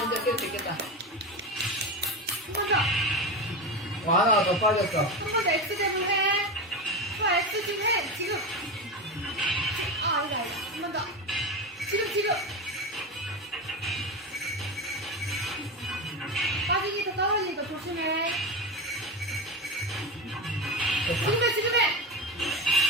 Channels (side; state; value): both; normal; correlation 0.21